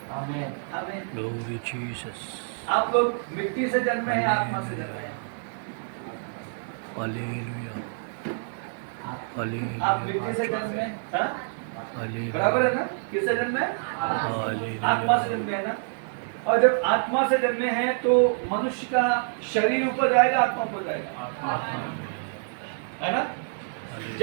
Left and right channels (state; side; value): silent; left; digital silence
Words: आमीन आमीन। आप लोग मिट्टी से जन्मे हैं, आत्मा से जन्मे हैं। आप मिट्टी से जन्मे हैं, बराबर है ना? किससे जन्मे? आत्मा से जन्मे है ना। और जब आत्मा से जन्मे हैं तो मनुष्य का शरीर ऊपर जाएगा, आत्मा ऊपर जाएगा, है ना?